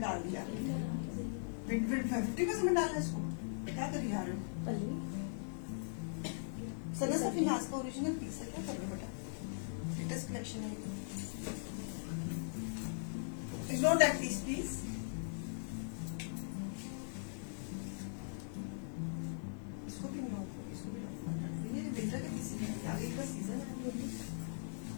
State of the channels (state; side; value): silent; right; digital silence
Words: डाल दिया? 50% डालना है इसको, क्या कर रही हो? सना सफीनाज का ओरिजिनल पीस है, क्या कर रहे हो बेटा? लेटेस्ट कलेक्शन है, इग्नोर दैट पीस प्लीज। इसको भी नो, इसको भी नो, ये विंटर के पीस है, आगे का सीजन है।